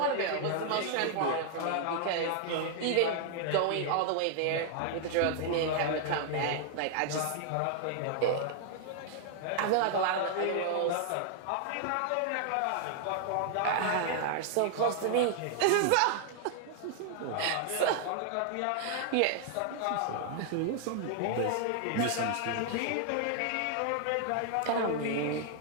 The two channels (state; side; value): different; both; correlation 0.00